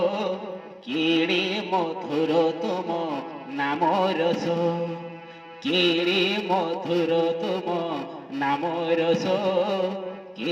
কেড়ে মধুর তুম নাম রস, কেড়ে মধুর তুম নাম রস,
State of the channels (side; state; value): both; identical; correlation 1.00